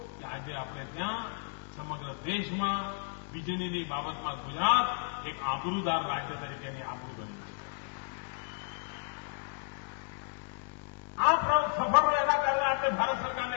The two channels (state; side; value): silent; right; 56 dB below the other